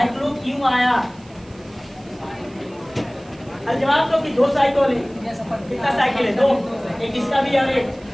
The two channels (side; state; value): right; noise; hiss, 27 dB below the sound